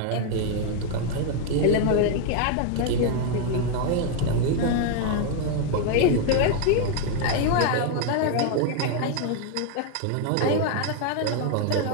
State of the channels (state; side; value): different; both; correlation 0.00